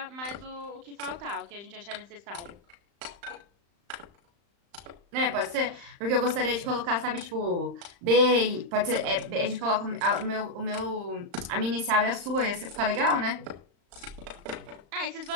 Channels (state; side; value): late; left; 35 ms